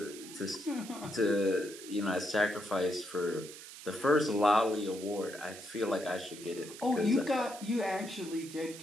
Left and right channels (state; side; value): noise; right; hiss, 14 dB below the sound